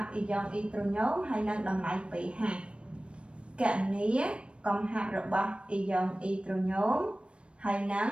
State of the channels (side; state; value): left; late; 0.058 ms